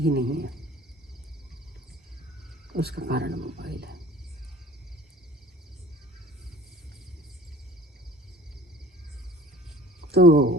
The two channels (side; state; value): both; normal; correlation 0.46